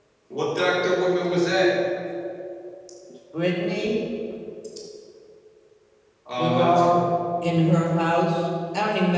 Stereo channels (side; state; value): both; identical; correlation 1.00